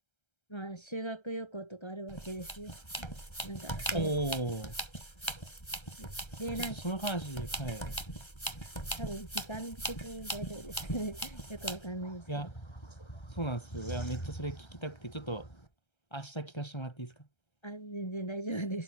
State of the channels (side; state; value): right; late; 1.3 ms